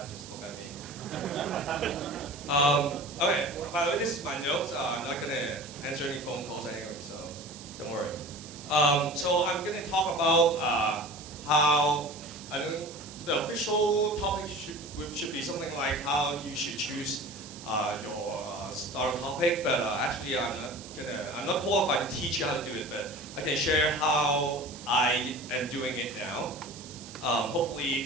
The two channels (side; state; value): right; noise; hiss, 15 dB below the sound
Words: just look at me. Okay, by the way, this is my notes. I'm not going to answer any phone calls anyway, so don't worry. So I'm going to talk about how the official topic should be something like how you should choose your starter topic, but actually I'm not qualified to teach you how to do it, but I can share how I am doing it now.